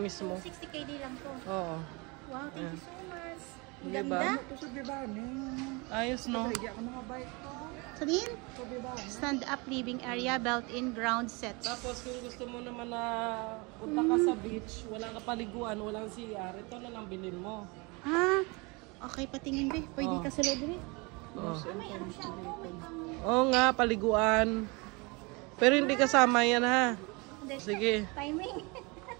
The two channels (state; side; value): quieter; left; 28.0 dB